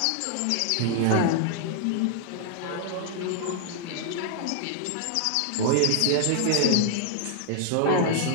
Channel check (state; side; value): different; both; correlation 0.00